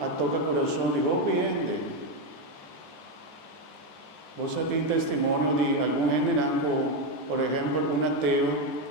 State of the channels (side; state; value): right; late; 14 ms